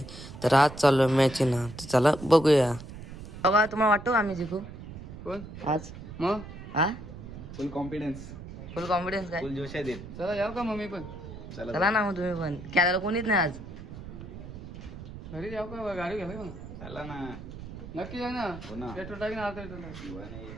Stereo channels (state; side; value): noise; right; rumble, 12 dB below the sound